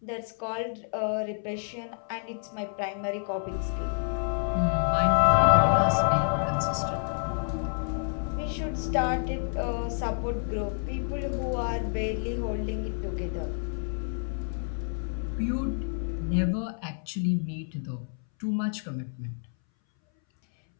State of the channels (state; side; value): silent; right; 59 dB below the other